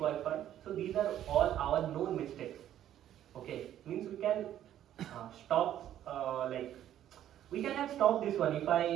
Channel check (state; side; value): quieter; left; 11.5 dB